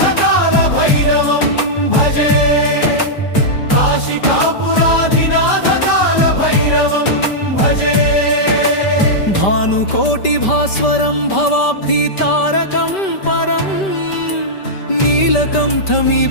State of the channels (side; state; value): right; late; 5.1 ms